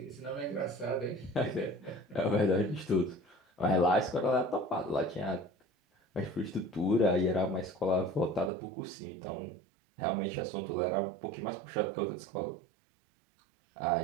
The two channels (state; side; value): drops out; left; at 8.5 s